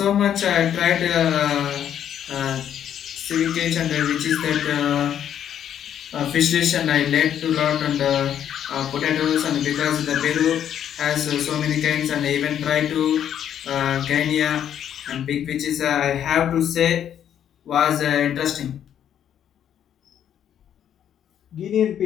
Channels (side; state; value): right; quieter; 9.7 dB